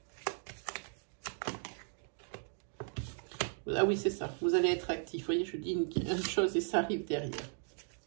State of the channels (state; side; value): silent; left; 53 dB below the other